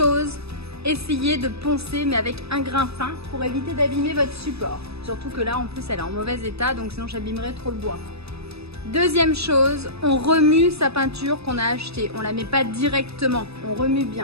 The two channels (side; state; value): left; late; 0.78 ms